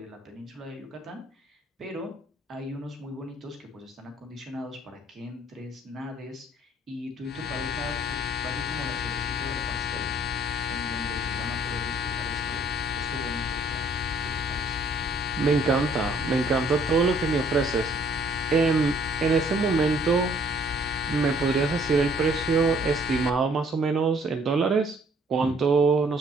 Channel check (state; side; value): normal; both; correlation 0.61